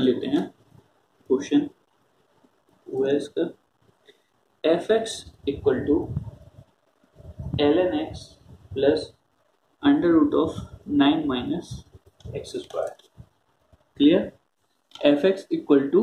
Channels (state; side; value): identical; both; correlation 1.00